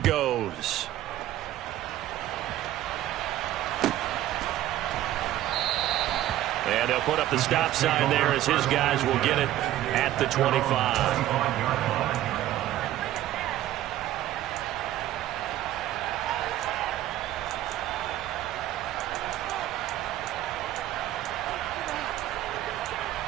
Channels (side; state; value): left; quieter; 13.7 dB